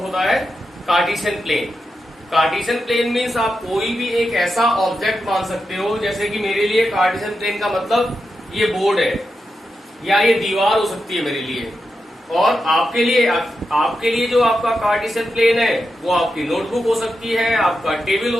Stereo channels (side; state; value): both; normal; correlation 0.88